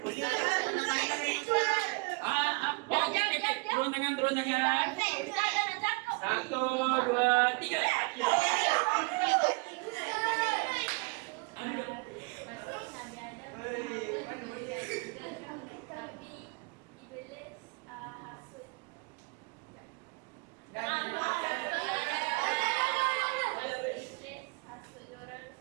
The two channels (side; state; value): left; quieter; 29.8 dB